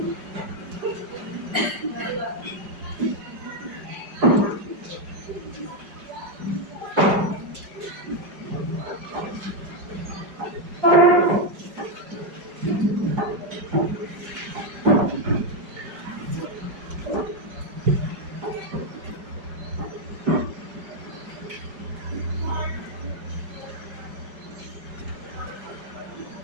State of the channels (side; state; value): left; late; 5.2 ms